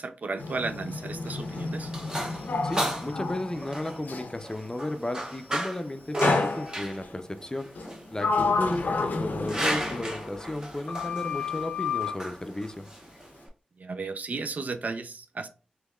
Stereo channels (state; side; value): normal; both; correlation 0.82